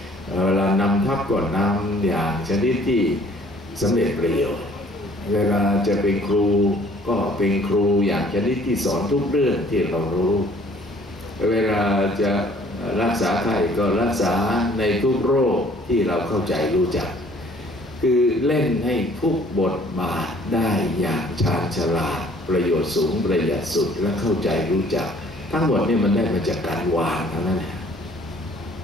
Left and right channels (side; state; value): both; normal; correlation 0.57